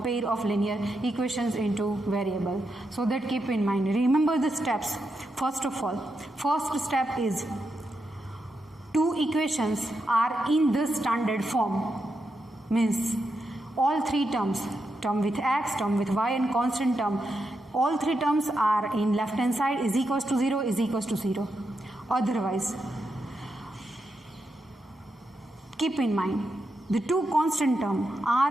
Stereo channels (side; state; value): both; normal; correlation 0.85